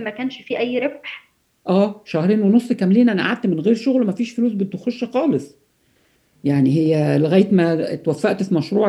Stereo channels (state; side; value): identical; both; correlation 1.00